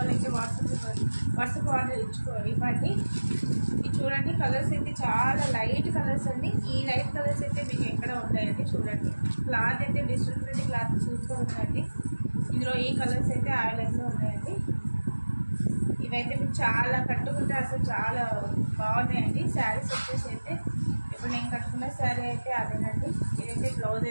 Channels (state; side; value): inverted; both; correlation -1.00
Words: వాట్సాప్ ఆర్డర్ ఇవ్వండి. ఇది చూడండి, కలర్స్ అయితే చాలా లైట్ కలర్స్ అండి. ఈ లైట్ కలర్స్ అయితే మీకు ఎక్కడ ఉన్నాయండి. చూడండి, క్లాత్ అయితే డిజిటల్ ప్రింట్ క్లాత్ సూపర్ ఉందండి. ఇందులో ఈ కలర్స్ అయితే అవైలబుల్గా ఉన్నాయండి. ఇవైతే మీకు చాలా కట్టుకుంటే అసలు చాలా బాగున్నాయండి శారీస్ వచ్చేసి అయితే. ఇప్పుడు నేను కట్టుకున్న శారీ అయితే అదేనండి. ఇదైతే బ్లౌజ్,